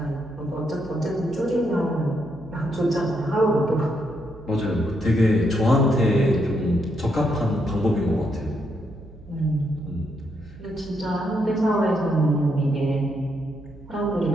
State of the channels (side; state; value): right; noise; hum, 19 dB below the sound